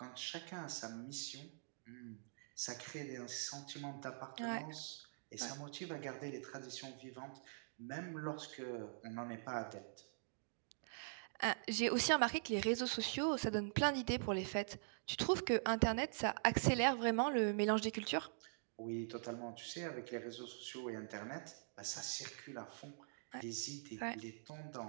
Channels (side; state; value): left; silent; digital silence